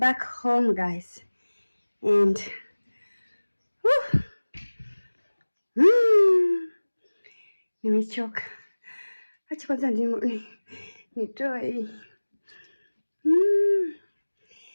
home, guys, and nimechoka. Acha kwanza nitoe hii.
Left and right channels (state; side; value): inverted; both; correlation -1.00